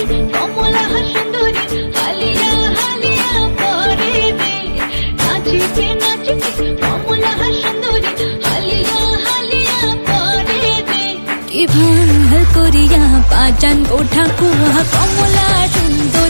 কমলা সুন্দরী হালিয়া হালিয়া পরে দে। নাচিতে নাচিতে কমলা সুন্দরী হালিয়া হালিয়া পরে দে। কি ভাল করিয়া বাজান গো ঠাকুয়া কমলা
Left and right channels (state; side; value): inverted; both; correlation -1.00